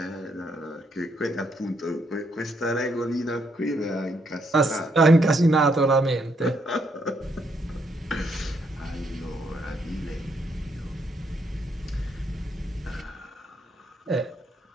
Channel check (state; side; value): normal; both; correlation 0.74